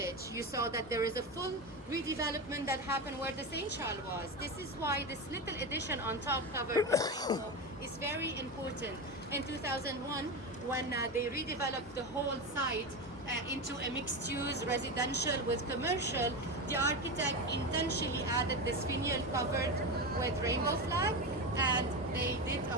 You saw that there is a full redevelopment that happened where the St. Charles was. This is why this little addition on top covered rainbow is very important. In 2001, when they redeveloped the whole site, into a mixed-use residential with commercial, the architect intentionally added this finial covered with rainbow flag, and they did a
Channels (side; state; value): both; normal; correlation 0.18